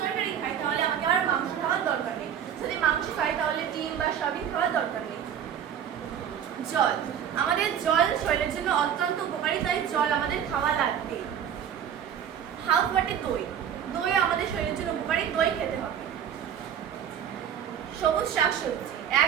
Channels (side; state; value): left; quieter; 8.9 dB